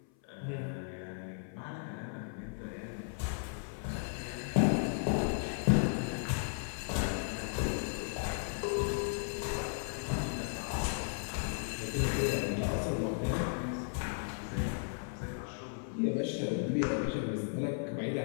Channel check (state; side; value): silent; right; 54 dB below the other